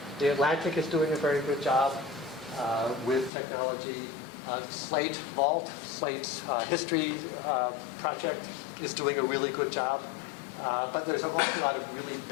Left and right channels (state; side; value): drops out; right; at 3.3 s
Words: The Atlantic is doing a very good job with technology. Slate Vault, Slate's history project is doing a really good job. But there's an awful lot of really